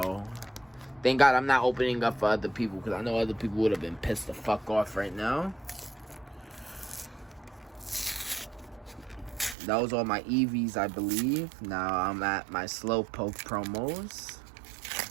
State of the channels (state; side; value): drops out; left; at 9.6 s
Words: thank God I'm not opening up for other people, because I know other people would have been pissed the fuck off right now. That was all my EVs, I believe. Now I'm at my Slowpoke promos.